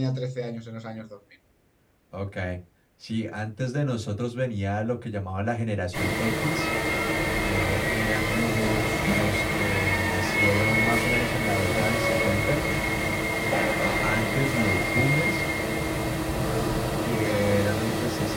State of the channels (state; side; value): identical; both; correlation 1.00